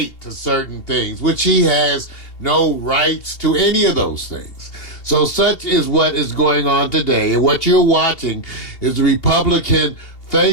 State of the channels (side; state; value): right; late; 2.7 ms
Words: to certain things, which he has no rights to any of those things. So such is what is going on today. And what you're watching is the Republican